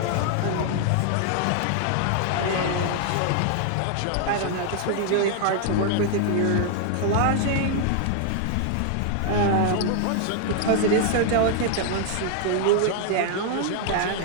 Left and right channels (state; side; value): different; both; correlation 0.00